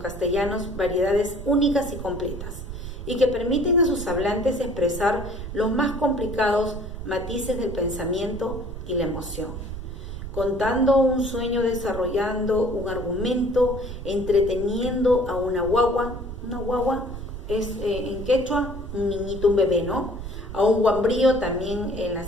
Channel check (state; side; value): noise; right; rumble, 9 dB below the sound